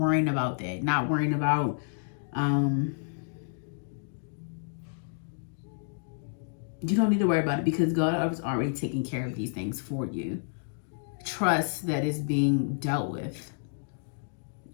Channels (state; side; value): silent; right; digital silence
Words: about that, not worrying about you don't need to worry about it, because God is already taking care of these things for you. Trust that it's being dealt with.